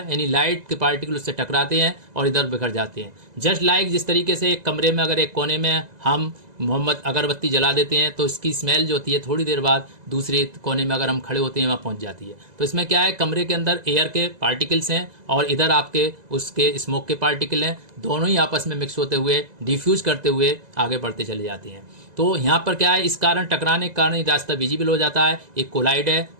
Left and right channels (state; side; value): late; left; 2.0 ms